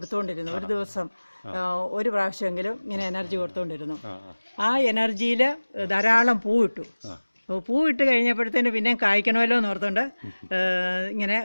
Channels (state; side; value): inverted; both; correlation -1.00